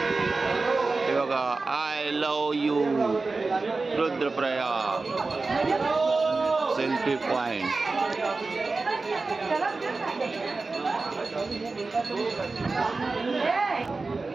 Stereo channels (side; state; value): left; quieter; 3.8 dB